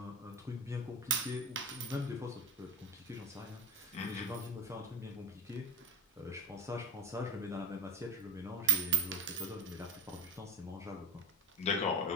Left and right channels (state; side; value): normal; both; correlation 0.23